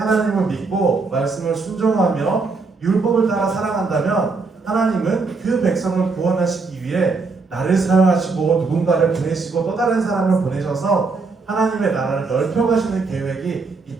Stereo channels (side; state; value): left; quieter; 4.2 dB